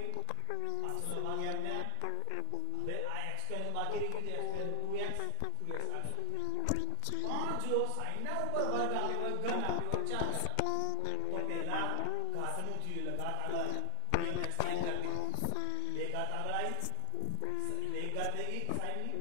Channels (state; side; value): different; both; correlation 0.00